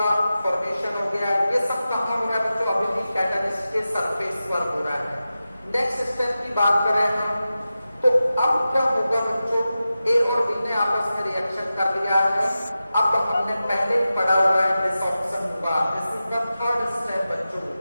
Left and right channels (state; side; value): inverted; both; correlation -0.93